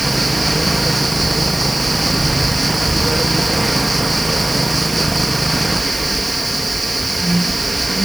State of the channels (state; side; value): noise; right; hiss, 11 dB below the sound